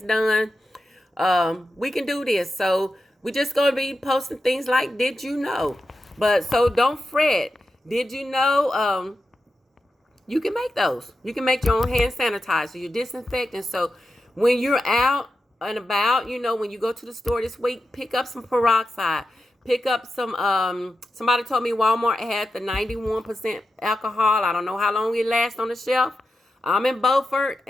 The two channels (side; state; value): both; normal; correlation 0.90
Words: done, we can do this. So we just going to be posting things like, did you know? But so don't fret. Did you know? You can make those. You can make your own hand sanitizer, your disinfectant. So when you're out and about, when you go to the store this week, pick up some peroxide. Pick up some, somebody told me Walmart had the 91% alcohol. I don't know how long it lasts on the shelf. I'm in Beaufort,